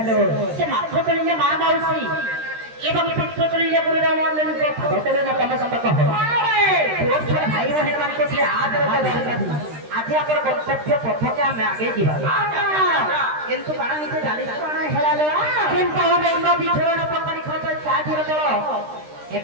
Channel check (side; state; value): left; late; 13 ms